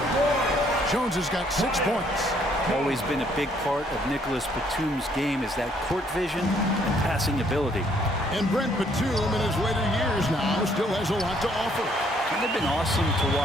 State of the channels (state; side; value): normal; both; correlation 0.66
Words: Jones has got 6 points. Always been a big part of Nicholas Batum's game is that court vision and passing ability. And Brent Batum in his later years now still has a lot to offer. It's been awesome to